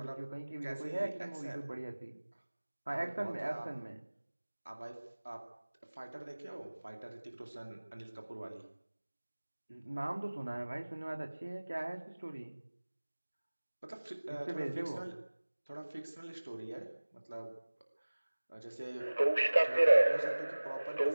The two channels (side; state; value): both; inverted; correlation -1.00